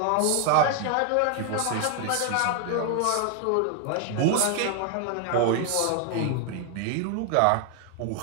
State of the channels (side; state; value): both; different; correlation 0.01